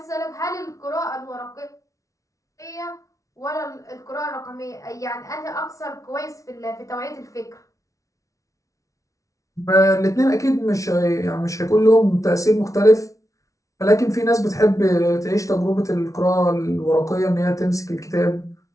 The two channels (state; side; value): late; right; 0.16 ms